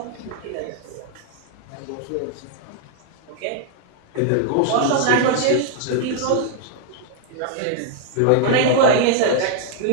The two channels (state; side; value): different; both; correlation 0.00